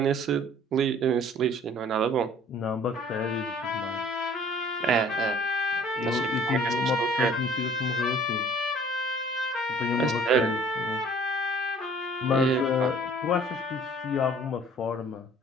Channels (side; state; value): both; normal; correlation 0.53